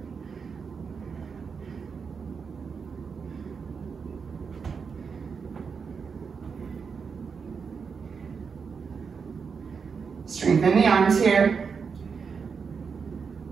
Strengthen the arms here.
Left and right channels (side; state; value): left; quieter; 5.8 dB